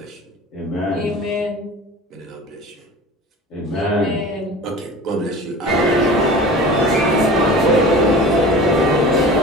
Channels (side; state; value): both; normal; correlation 0.38